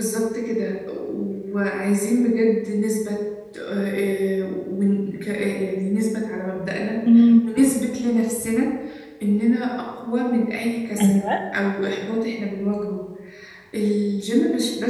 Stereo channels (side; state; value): both; identical; correlation 1.00